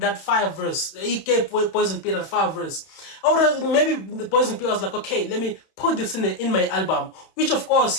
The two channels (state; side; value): late; right; 31 ms